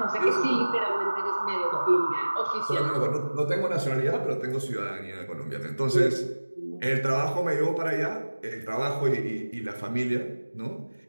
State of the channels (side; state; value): both; inverted; correlation -1.00